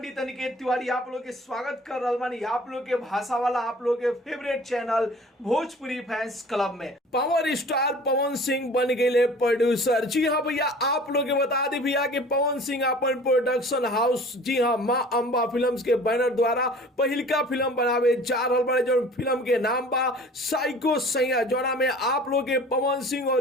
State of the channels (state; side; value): normal; both; correlation 0.46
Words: अनिकेत तिवारी आप लोग के स्वागत कर रहा बानी आप लोग के भाषा वाला आप लोग के favourite channel Bhojpuri fans club में। पावर स्टार पवन सिंह बन गए प्रोड्यूसर। जी हाँ भैया, आप लोग के बता दी भैया कि पवन सिंह अपन प्रोडक्शन हाउस जी हाँ माँ अंबा फिल्म्स के बैनर द्वारा पहिलका फिल्म बनावे जा रहा बड़े, जो फिल्म के नाम बा साइको सैया, जोड़ा में आप लोग के पवन सिंह और